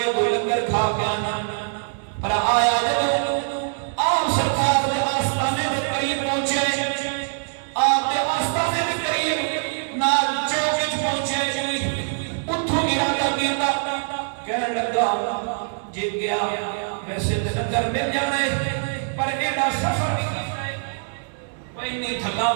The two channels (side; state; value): left; silent; digital silence